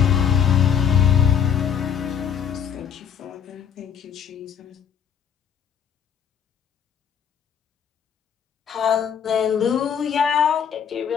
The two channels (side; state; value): right; quieter; 7.9 dB